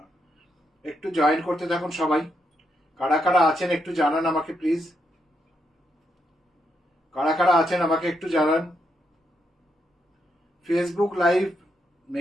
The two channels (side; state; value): both; normal; correlation 0.80